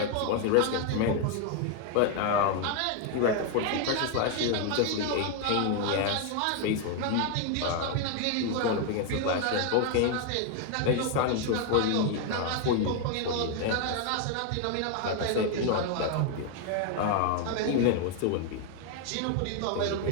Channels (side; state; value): both; different; correlation 0.00